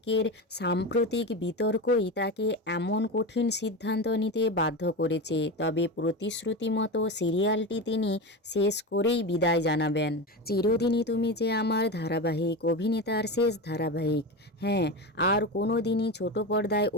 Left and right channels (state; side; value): normal; both; correlation 0.22